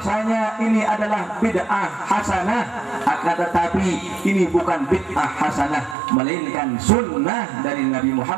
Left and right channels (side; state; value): left; drops out; at 6.0 s